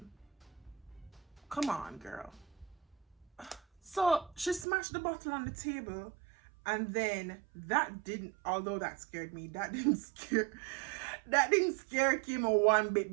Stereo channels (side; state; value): left; drops out; at 4.7 s